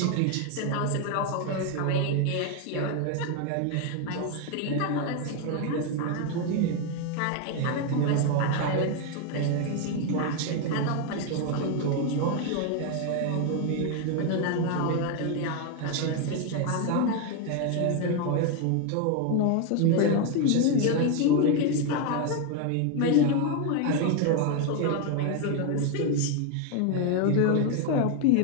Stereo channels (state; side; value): different; both; correlation 0.01